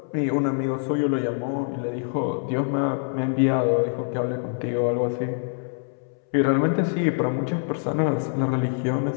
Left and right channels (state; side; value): silent; right; 62 dB below the other